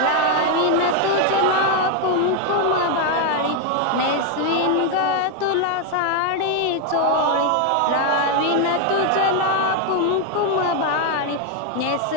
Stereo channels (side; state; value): both; different; correlation 0.01